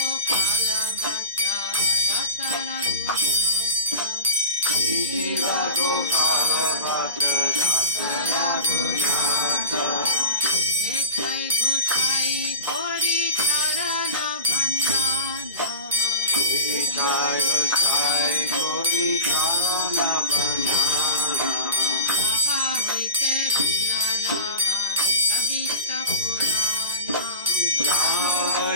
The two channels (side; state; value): both; inverted; correlation -0.33